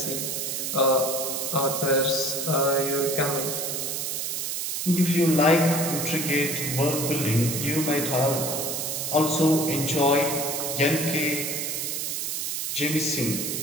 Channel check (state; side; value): noise; right; hiss, 2 dB below the sound